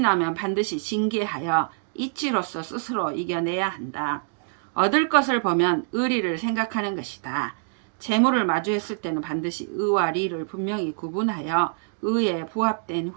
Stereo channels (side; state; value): left; silent; digital silence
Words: 반드시 징계하여 이치로서 스스로 이겨내야 한다. 얻을 것을 보면 의리를 생각하는 것이다. 재물을 마주했을 때는 반드시 의와 리를 분명히 구분하여 의에 부합된